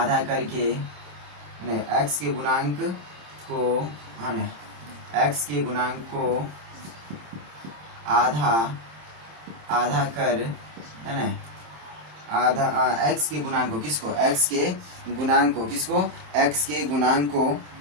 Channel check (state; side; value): late; left; 26 ms